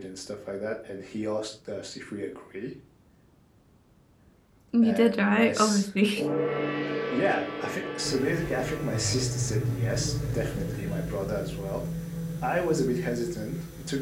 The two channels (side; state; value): both; identical; correlation 1.00